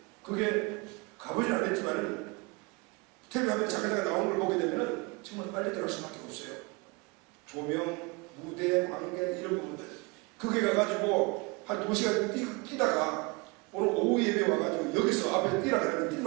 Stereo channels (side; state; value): left; quieter; 27.8 dB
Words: 그게 가보진 않았지만은 텔레비전에 잠깐 나오는 걸 보게 되면은 정말 빨리 들어갈 수밖에 없어요. 조명, 무대, 관객 이런 부분들 그게 가가지고 한 2시간 뛰다가 오늘 오후 예배 와가지고 여기서 앞에 뛰라 그러면 뛸